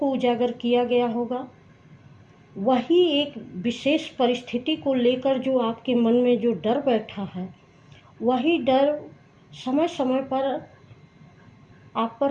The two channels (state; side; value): identical; both; correlation 1.00